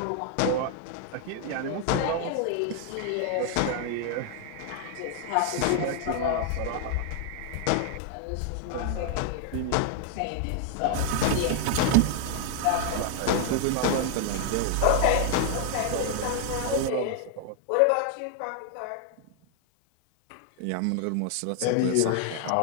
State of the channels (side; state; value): both; different; correlation 0.00